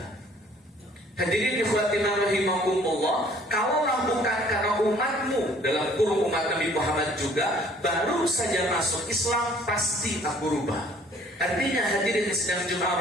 Hadirin ikhwatina rahimakumullah, kalaulah bukan karena umatmu, dalam kurung umat Nabi Muhammad juga, baru saja masuk Islam, pasti aku rubah. Artinya hadirin sedang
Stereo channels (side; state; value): both; normal; correlation 0.56